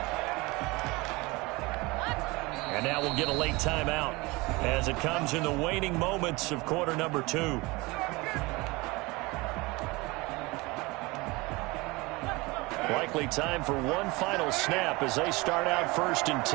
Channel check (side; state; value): left; quieter; 23.6 dB